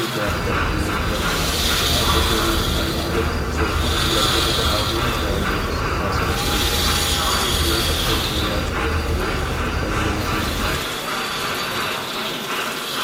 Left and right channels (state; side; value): identical; both; correlation 1.00